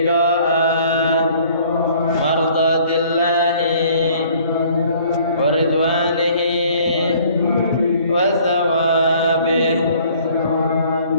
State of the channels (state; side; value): inverted; both; correlation -0.56